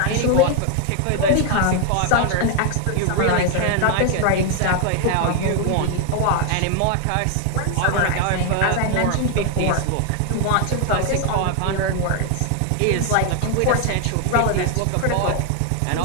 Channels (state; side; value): different; both; correlation 0.00